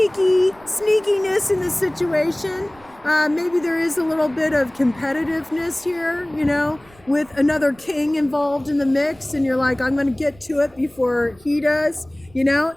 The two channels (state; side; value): noise; right; rumble, 27 dB below the sound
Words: in this situation. Maybe there is a little bit of competitiveness here, you know, with another king involved in the mix, and you're like, I'm going to get to it before he does, you know.